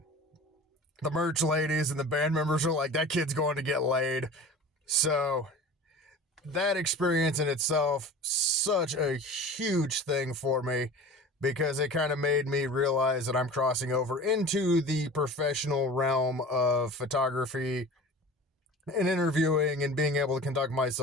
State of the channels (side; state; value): both; normal; correlation 0.38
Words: the merch ladies and the band members are like, "That kid's going to get laid." So that experience in itself, such a huge thing for me, because it kind of made me realize that I'm crossing over into the professional realm of photography and interviewing and being able to conduct